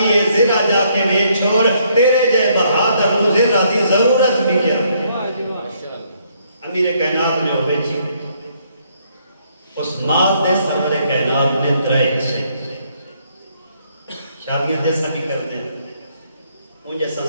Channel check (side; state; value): both; inverted; correlation -0.70